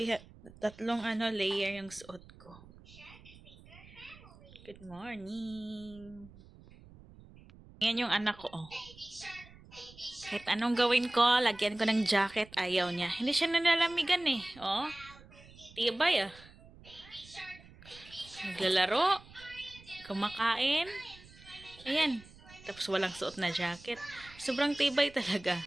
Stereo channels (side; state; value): right; noise; rumble, 21 dB below the sound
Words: tatlong layer yung suot ko. Good morning. Yan yung anak ko, oh. Kahit anong gawin ko, lagyan ko ng jacket, ayaw niya. Hindi siya nanlalamigan eh. Oh, tibay ah. Naglalaro, kumakain. Ayan. Tapos walang suot na jacket. Sobrang tibay talaga.